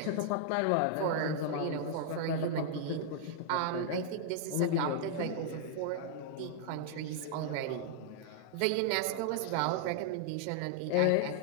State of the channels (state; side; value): different; both; correlation -0.01